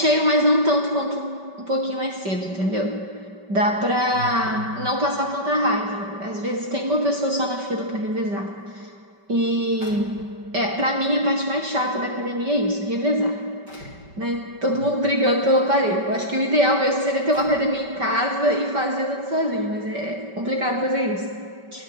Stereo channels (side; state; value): left; late; 5.2 ms